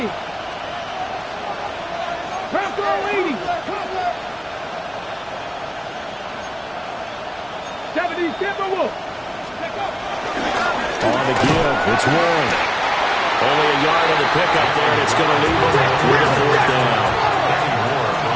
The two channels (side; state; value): both; identical; correlation 1.00